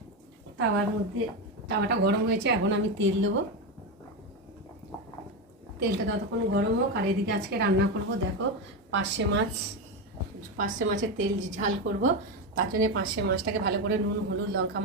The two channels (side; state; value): both; normal; correlation 0.13